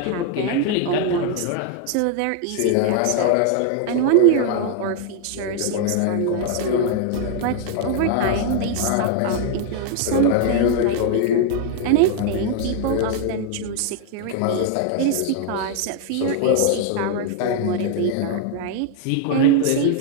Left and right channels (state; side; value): different; both; correlation 0.00